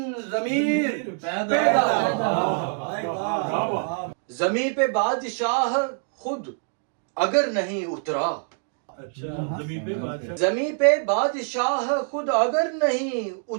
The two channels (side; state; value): left; silent; digital silence